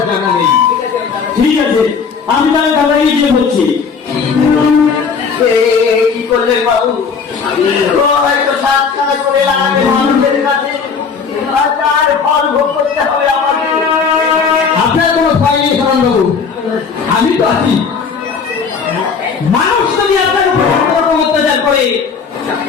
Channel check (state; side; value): quieter; right; 5.7 dB